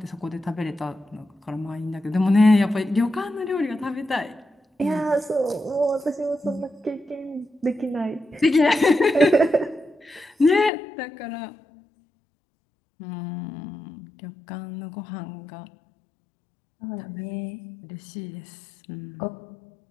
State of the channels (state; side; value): drops out; right; at 10.7 s